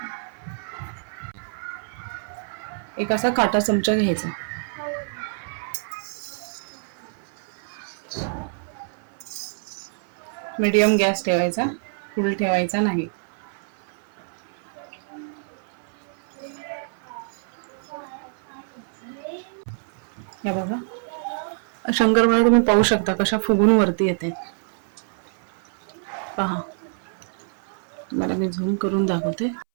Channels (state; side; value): silent; left; 61 dB below the other